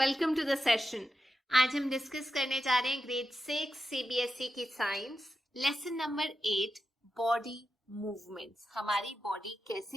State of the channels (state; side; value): normal; both; correlation 0.90